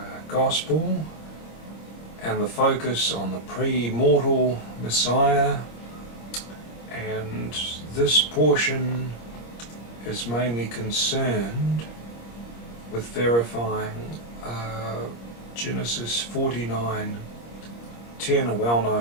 Gospel and the focus on the pre-mortal Messiah, and this portion is mainly concerned with verifying Genesis 49:10, a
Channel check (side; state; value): right; late; 26 ms